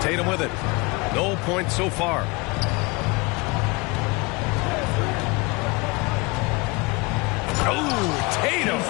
with it. No points so far. Oh, Tatum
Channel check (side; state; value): right; quieter; 26.4 dB